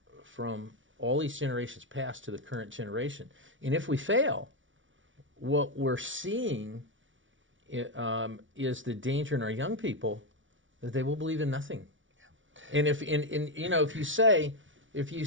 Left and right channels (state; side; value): late; left; 0.56 ms